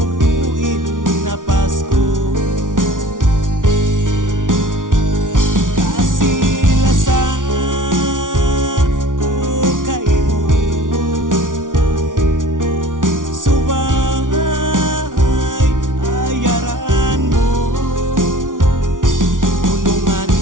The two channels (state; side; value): late; left; 0.88 ms